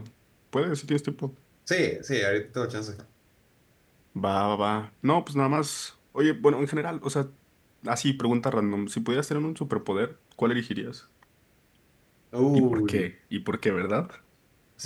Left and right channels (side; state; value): both; identical; correlation 1.00